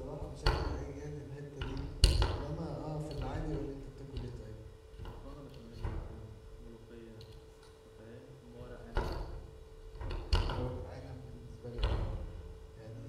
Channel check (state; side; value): identical; both; correlation 1.00